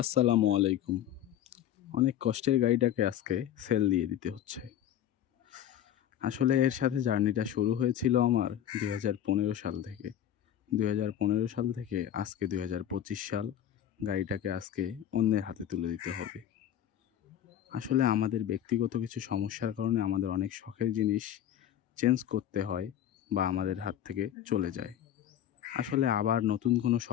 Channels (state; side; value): quieter; right; 10.7 dB